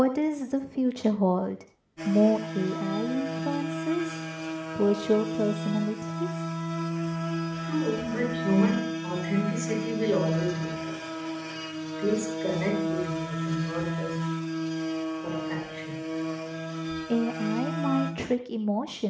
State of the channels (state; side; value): identical; both; correlation 1.00